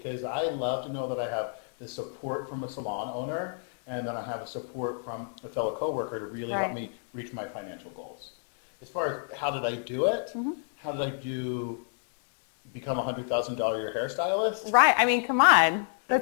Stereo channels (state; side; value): silent; right; 58 dB below the other